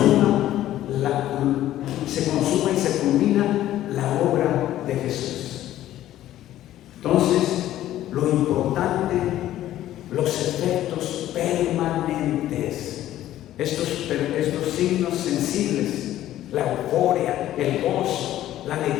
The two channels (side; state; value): right; quieter; 13.3 dB